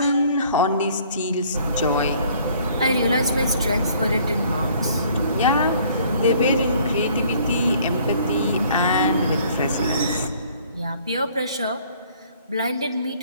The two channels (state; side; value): inverted; both; correlation -0.58